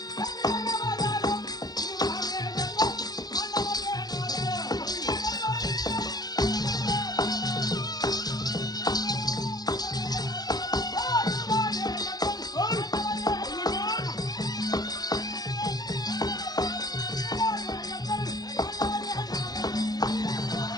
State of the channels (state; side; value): late; right; 0.19 ms